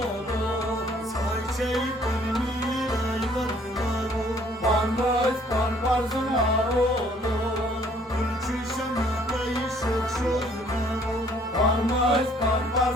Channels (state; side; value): normal; both; correlation 0.60